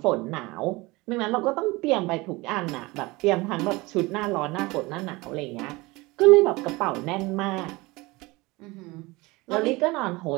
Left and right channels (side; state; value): left; quieter; 22.6 dB